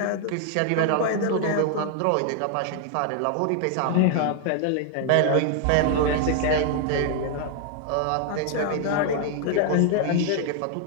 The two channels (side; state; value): both; different; correlation 0.00